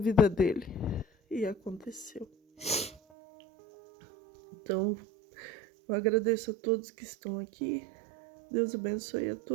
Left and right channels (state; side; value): drops out; left; at 3.0 s